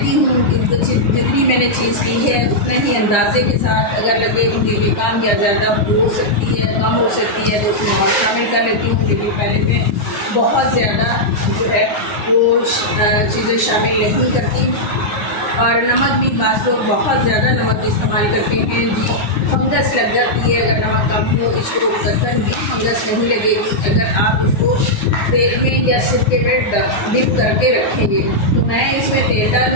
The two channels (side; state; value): right; late; 9.4 ms